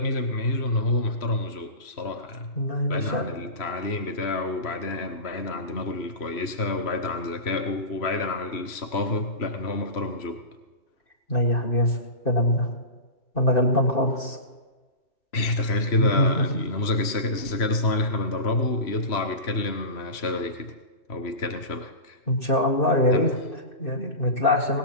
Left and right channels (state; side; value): late; right; 3.0 ms